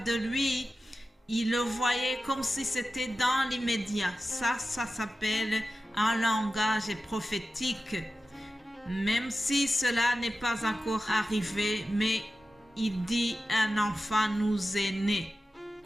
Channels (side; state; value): both; normal; correlation 0.93